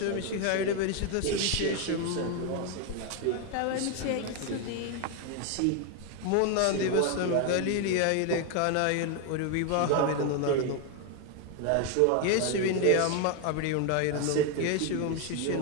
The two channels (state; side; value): different; both; correlation 0.01